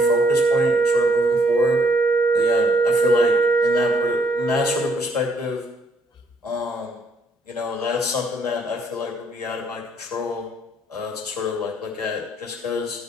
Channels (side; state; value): both; normal; correlation 0.68